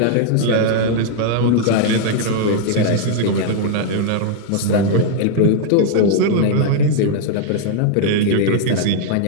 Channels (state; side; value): different; both; correlation 0.00